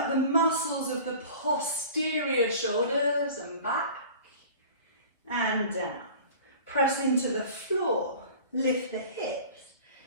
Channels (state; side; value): inverted; both; correlation -0.42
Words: the muscles of the posterior shoulders and back, and down. Press into the floor, lift the hips,